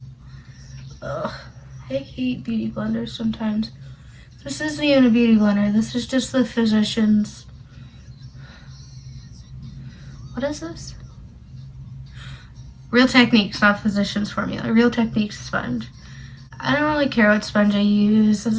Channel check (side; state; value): both; identical; correlation 1.00